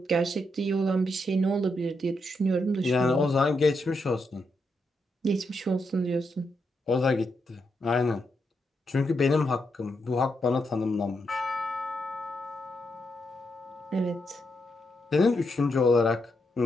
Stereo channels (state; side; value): normal; both; correlation 0.82